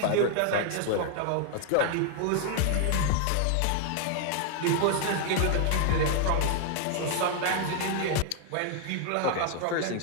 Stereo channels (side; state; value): both; different; correlation 0.00